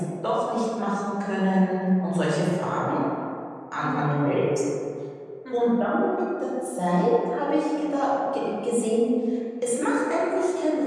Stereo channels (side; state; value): both; identical; correlation 1.00